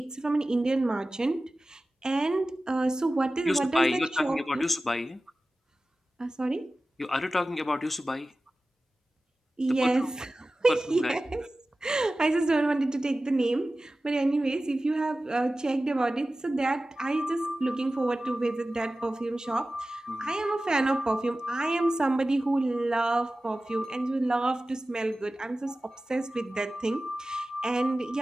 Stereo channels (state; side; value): normal; both; correlation 0.96